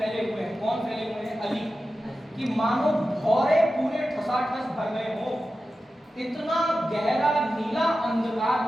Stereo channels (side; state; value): both; normal; correlation 0.93